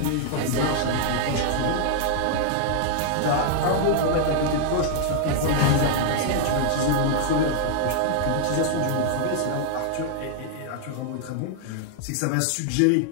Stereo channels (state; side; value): different; both; correlation 0.00